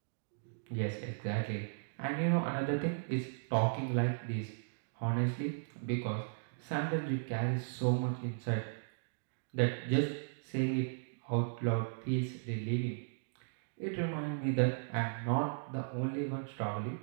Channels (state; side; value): silent; left; digital silence